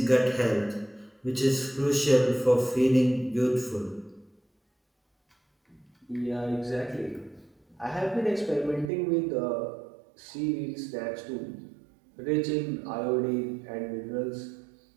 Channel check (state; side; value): drops out; left; at 8.9 s